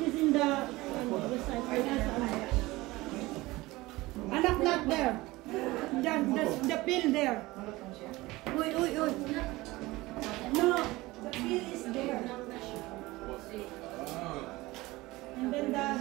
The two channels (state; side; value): quieter; left; 20.1 dB